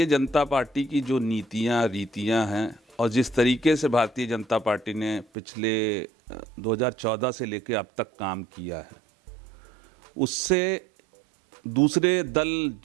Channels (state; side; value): drops out; left; at 5.2 s